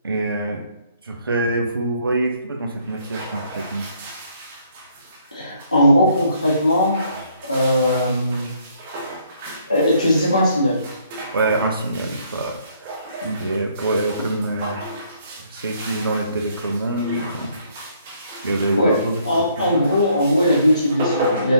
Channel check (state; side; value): inverted; both; correlation -0.66